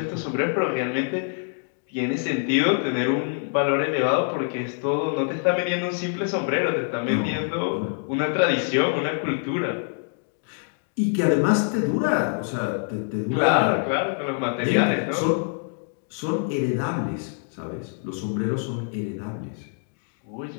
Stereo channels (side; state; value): right; silent; 58 dB below the other